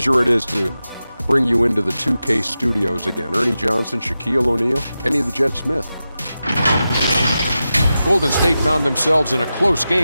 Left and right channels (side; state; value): both; inverted; correlation -0.92